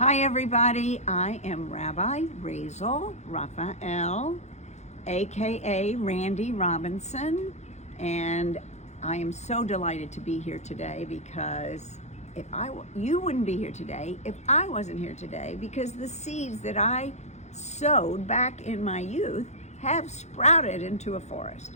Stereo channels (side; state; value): right; late; 0.33 ms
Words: Hi everybody, I am Rabbi Razel Raphael, aka Randy Robinson, and I am so delighted to be here today because you wouldn't be here today if I wasn't here today, because the seeds that I sowed back in my youth have sprouted into a